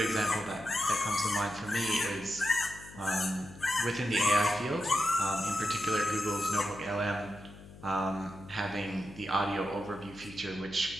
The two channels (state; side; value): noise; left; hum, 18 dB below the sound